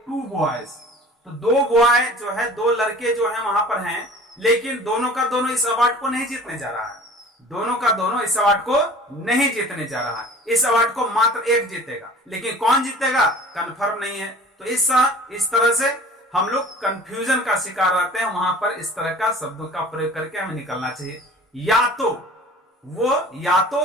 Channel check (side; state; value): both; normal; correlation 0.45